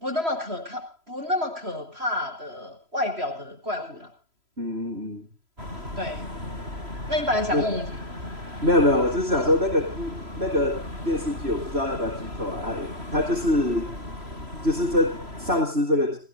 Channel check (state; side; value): late; left; 3.0 ms